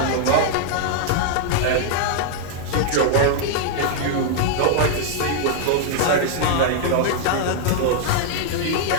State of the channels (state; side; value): different; both; correlation -0.01